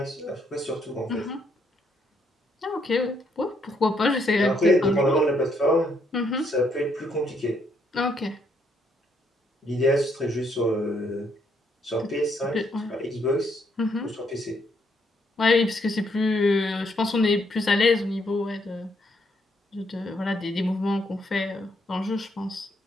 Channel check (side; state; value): both; normal; correlation 0.73